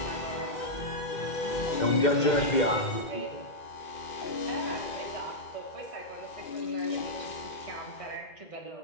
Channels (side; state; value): right; late; 2.1 ms